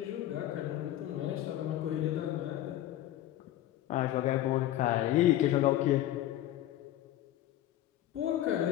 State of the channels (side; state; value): right; quieter; 13.3 dB